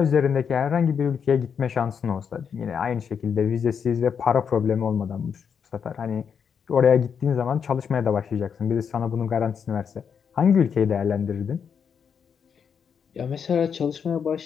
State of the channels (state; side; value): quieter; right; 7.0 dB